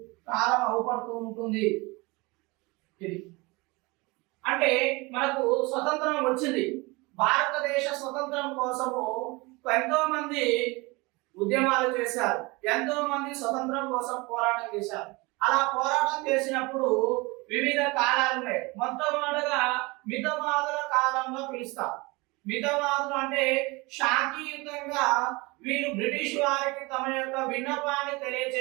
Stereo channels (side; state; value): left; quieter; 24.9 dB